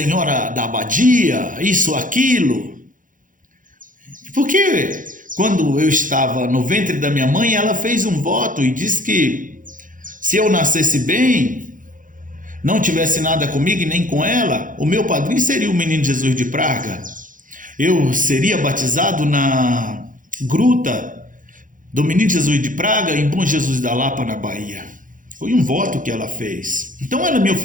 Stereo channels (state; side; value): late; left; 0.39 ms